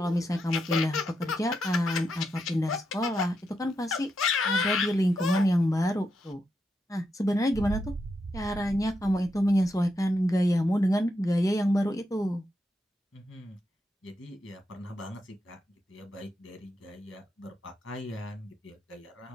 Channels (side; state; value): both; normal; correlation 0.84